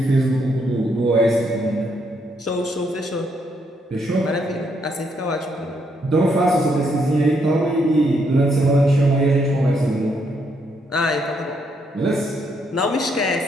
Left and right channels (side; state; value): both; normal; correlation 0.75